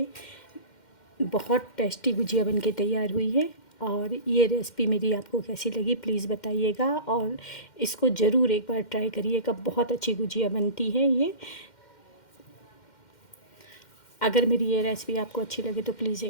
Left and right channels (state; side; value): late; right; 2.1 ms